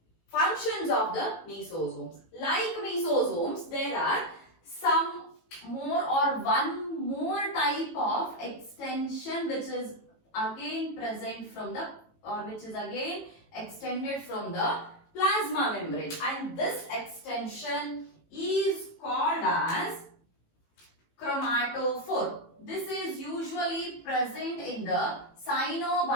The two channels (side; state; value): right; late; 18 ms